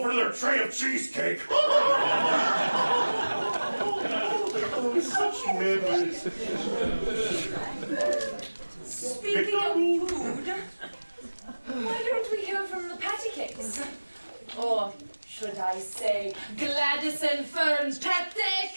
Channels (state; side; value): inverted; both; correlation -1.00